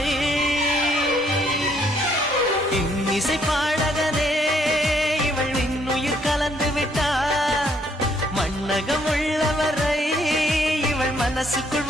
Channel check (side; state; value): both; normal; correlation 0.68